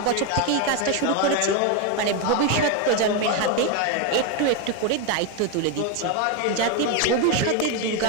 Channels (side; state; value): both; different; correlation 0.02